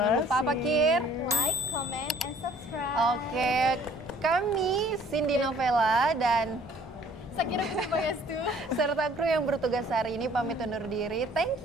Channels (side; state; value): both; normal; correlation 0.56